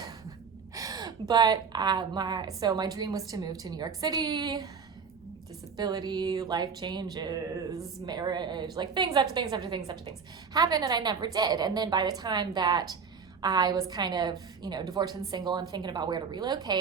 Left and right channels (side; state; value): left; quieter; 5.8 dB